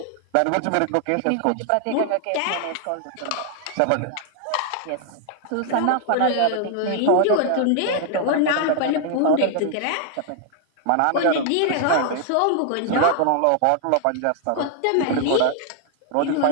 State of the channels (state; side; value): different; both; correlation 0.00